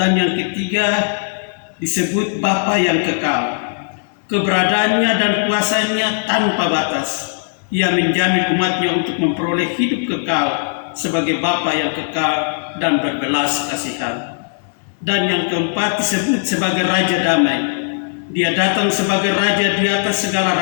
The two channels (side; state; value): right; silent; digital silence